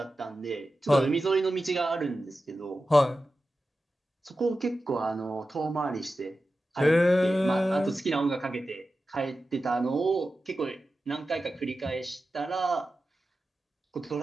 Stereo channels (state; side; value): normal; both; correlation 0.93